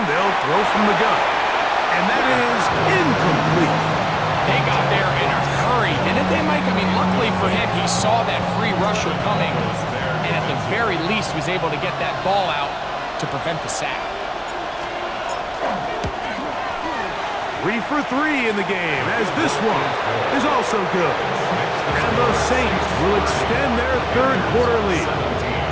they'll throw from the gun. And that is incomplete. They got there in a hurry, didn't they, Mike? I mean, luckily for him, he saw that free rusher coming, and at the very least was able to get that ball out to prevent the sack. 3 for 3 in the game, as this one is also good. And the Saints will extend their third quarter lead.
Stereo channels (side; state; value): both; identical; correlation 1.00